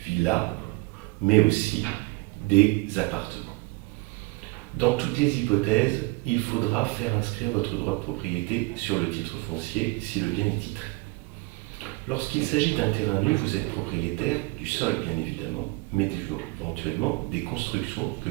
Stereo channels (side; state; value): left; quieter; 25.2 dB